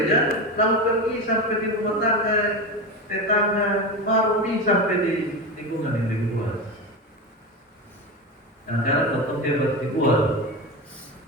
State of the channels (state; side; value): normal; both; correlation 0.20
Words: lalu pergi sampai di rumah tangga, tetangga, baru sampai di lingkungan yang lebih luas. Dan karena tetap hebat di luar,